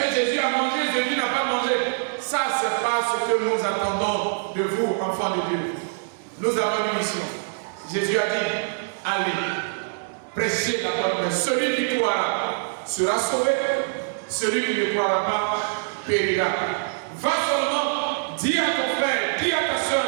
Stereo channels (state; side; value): silent; left; digital silence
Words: Jésus a mangé, Jésus n'a pas mangé? Ça, ce n'est pas ce que nous attendons de vous, enfants de Dieu. Nous avons une mission. Jésus a dit, allez, prêchez la bonne nouvelle. Celui qui croira sera sauvé. Celui qui ne croira pas périra. Va seulement, dis à ton frère, dis à ta soeur,